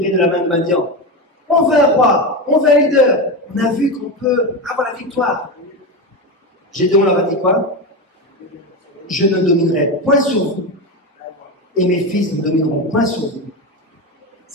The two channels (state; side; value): normal; both; correlation 0.17